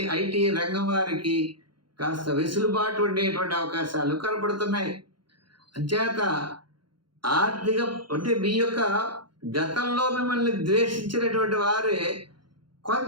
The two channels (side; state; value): left; late; 0.72 ms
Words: ఐటీ రంగం వారికి కాస్త వెసులుబాటు ఉండేటువంటి అవకాశాలు కనపడుతున్నాయి. అంచేత ఆర్థిక అంటే మీ యొక్క గతంలో మిమ్మల్ని ద్వేషించినటువంటి వారే